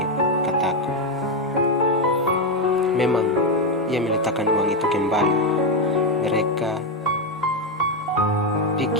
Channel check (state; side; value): normal; both; correlation 0.06